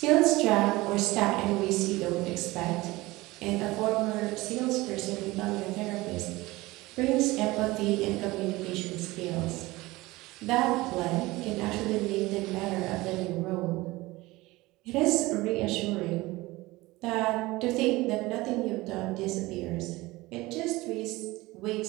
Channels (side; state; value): left; quieter; 20.3 dB